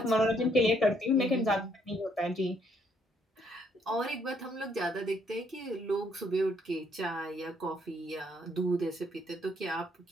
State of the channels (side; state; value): both; normal; correlation 0.69